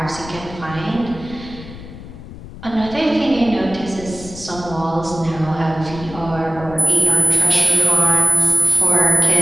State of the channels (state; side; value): noise; left; rumble, 15 dB below the sound